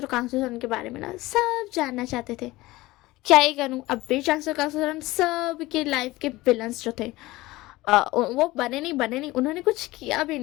और कांगसो के बारे में ना सब जानना चाहते थे। क्या ही करूँ, अब भी चांगसो कांगसो सब के लाइफ के विलन्स जो थे वो बने नहीं, उन्होंने कुछ किया भी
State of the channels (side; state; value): right; quieter; 19.1 dB